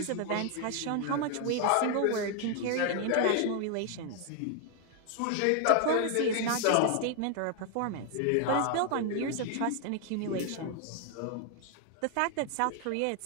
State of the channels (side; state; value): both; different; correlation 0.00